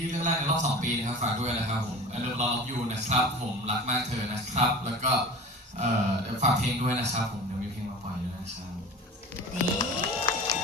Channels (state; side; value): normal; both; correlation 0.37